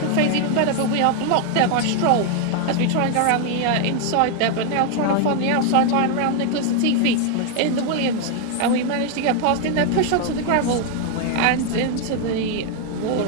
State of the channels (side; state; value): both; different; correlation 0.01